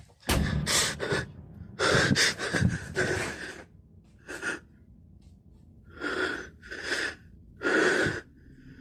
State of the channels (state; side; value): identical; both; correlation 1.00